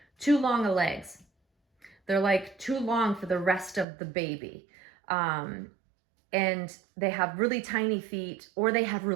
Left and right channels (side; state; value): left; drops out; at 3.9 s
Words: too long of legs. They're like too long for the rest of the baby. And they have really tiny feet, or they have